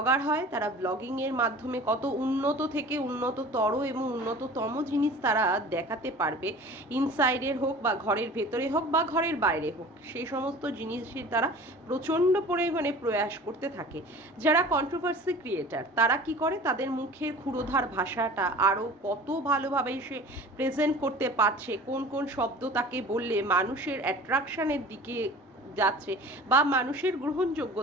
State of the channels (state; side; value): normal; both; correlation 0.41